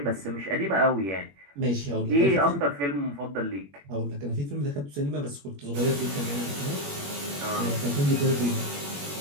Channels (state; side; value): late; left; 21 ms